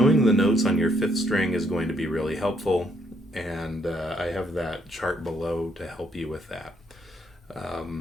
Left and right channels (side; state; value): both; normal; correlation 0.71